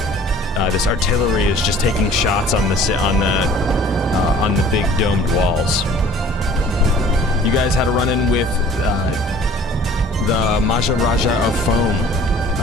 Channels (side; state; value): both; normal; correlation 0.50